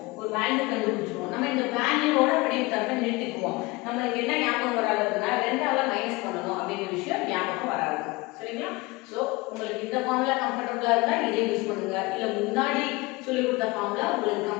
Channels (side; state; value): right; quieter; 23.1 dB